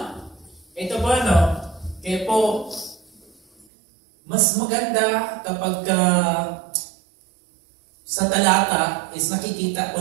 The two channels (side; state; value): left; drops out; at 3.7 s